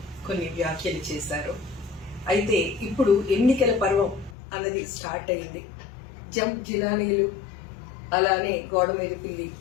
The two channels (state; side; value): drops out; right; at 4.4 s